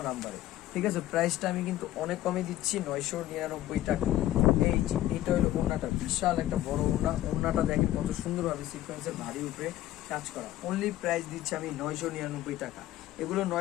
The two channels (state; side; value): quieter; right; 14.2 dB